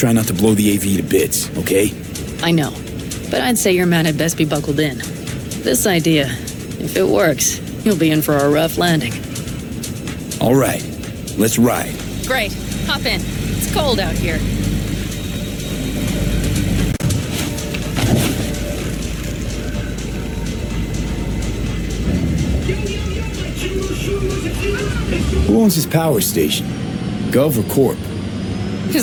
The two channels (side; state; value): both; identical; correlation 1.00